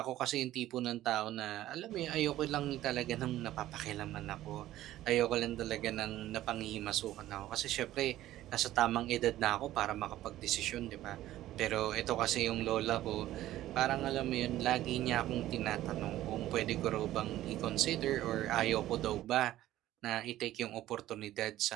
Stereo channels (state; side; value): quieter; left; 14.3 dB